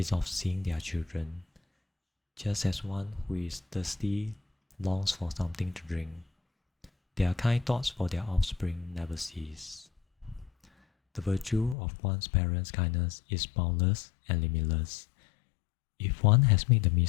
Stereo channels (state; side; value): drops out; right; at 11.8 s